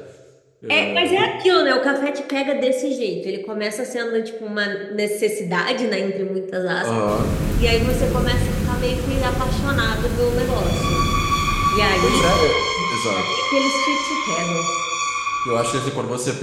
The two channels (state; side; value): identical; both; correlation 1.00